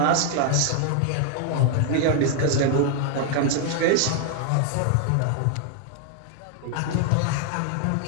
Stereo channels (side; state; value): both; different; correlation 0.00